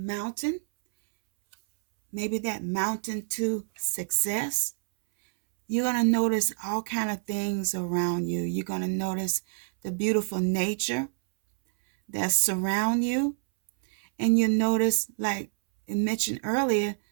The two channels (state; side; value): silent; left; 60 dB below the other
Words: maybe that mountain to success, you're going to notice all kind of things around you. You're going to notice the beautiful nature that surround you. And you notice, like I mentioned earlier,